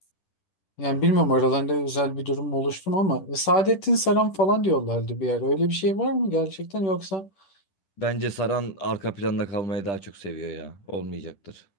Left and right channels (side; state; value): right; late; 10 ms